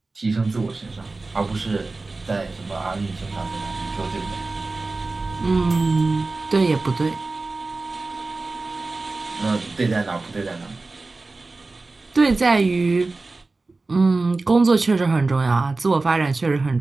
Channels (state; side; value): quieter; left; 3.5 dB